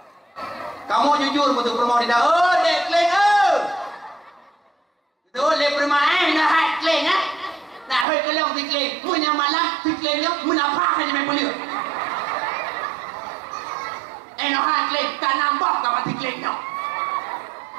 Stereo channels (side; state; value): left; drops out; at 8.1 s